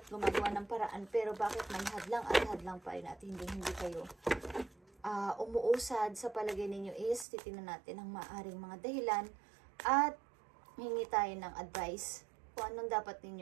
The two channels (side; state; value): left; drops out; at 7.2 s